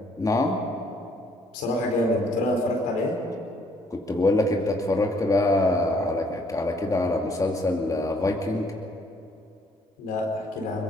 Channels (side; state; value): both; normal; correlation 0.64